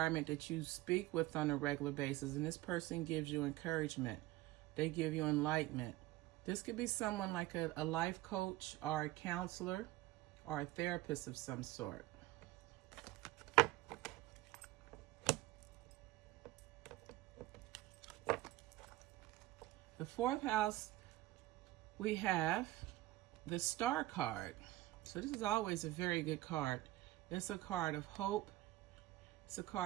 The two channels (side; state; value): left; quieter; 17.2 dB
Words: that you speak with on a regular basis. And this person gives you encouragement. They give you enlightenment. This could be someone like a life coach or a counselor or a therapist of some sort. The fourth house, we have the Star card. So this is always a very good card. It's a card of hope. It's a